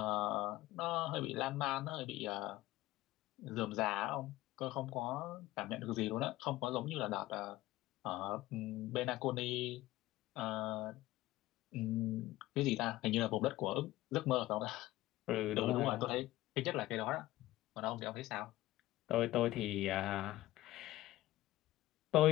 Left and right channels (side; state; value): right; quieter; 16.7 dB